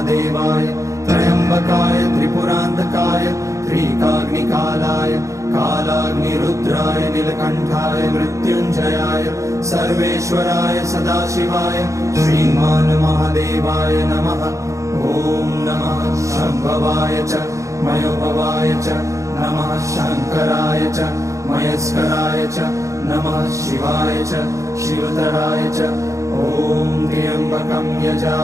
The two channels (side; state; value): left; late; 0.15 ms